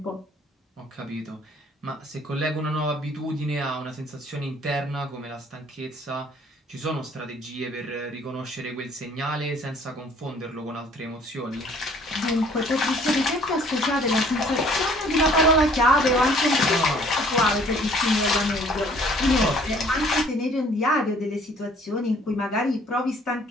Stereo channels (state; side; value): normal; both; correlation 0.57